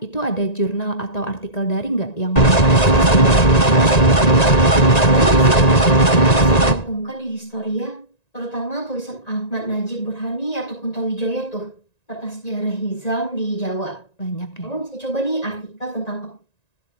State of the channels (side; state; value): right; late; 1.9 ms